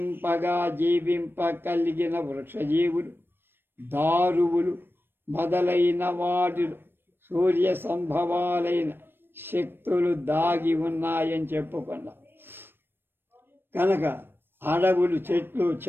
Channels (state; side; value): late; left; 0.099 ms